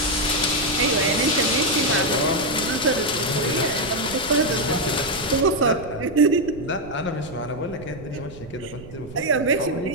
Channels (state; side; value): noise; right; rumble, 16 dB below the sound